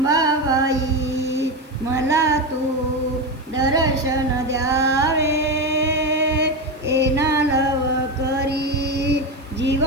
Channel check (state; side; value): noise; left; hiss, 29 dB below the sound